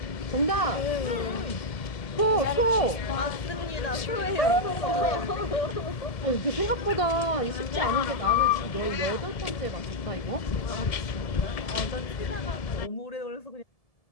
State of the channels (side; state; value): right; late; 1.7 ms